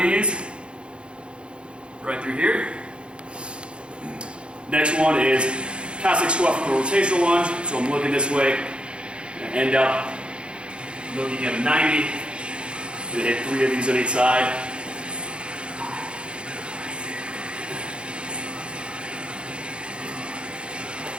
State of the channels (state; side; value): late; left; 0.056 ms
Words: these. Right through here. Next one is Cossack squat from a rotational lunge. So I'm looking this way. I'm going to end up looking at a 90. I'm going to hit 3 of these on each side.